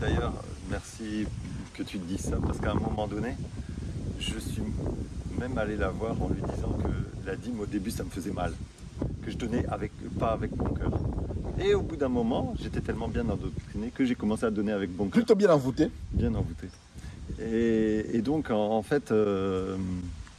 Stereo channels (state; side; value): identical; both; correlation 1.00